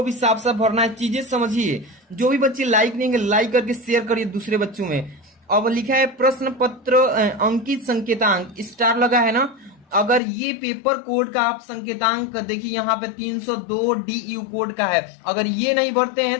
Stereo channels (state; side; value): drops out; right; at 10.2 s